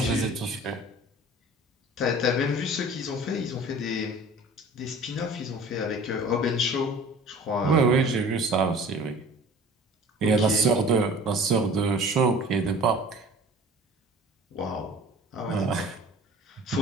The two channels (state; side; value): normal; both; correlation 0.44